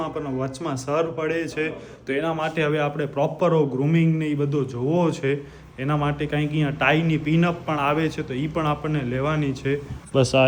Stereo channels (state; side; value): identical; both; correlation 1.00